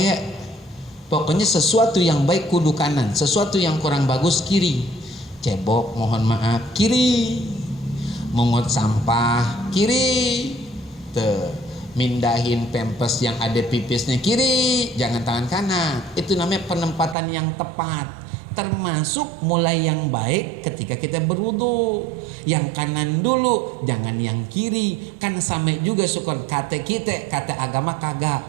Pokoknya sesuatu yang baik kudu kanan, sesuatu yang kurang bagus kiri. Cebok mohon maaf kiri, mungut sampah kiri, mindahin pempes yang ada pipisnya kiri, jangan tangan kanan. Itu namanya penempatan yang tepat, termasuk mulai yang baik ketika kita berwudu, yang kanan dulu, jangan yang kiri. Kan sama juga syukur kata kita, kata agama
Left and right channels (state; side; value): drops out; left; at 17.2 s